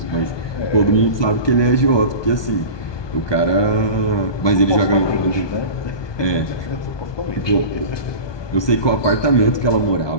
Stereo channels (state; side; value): late; right; 1.2 ms